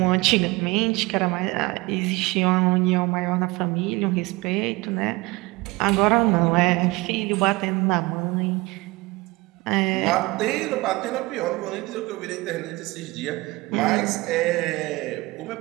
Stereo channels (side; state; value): left; quieter; 22.4 dB